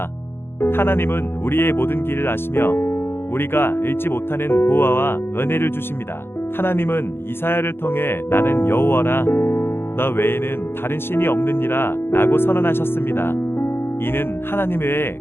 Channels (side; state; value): right; late; 0.11 ms